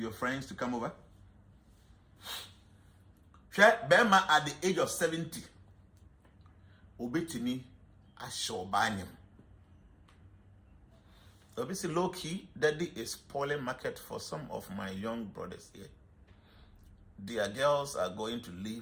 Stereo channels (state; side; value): identical; both; correlation 1.00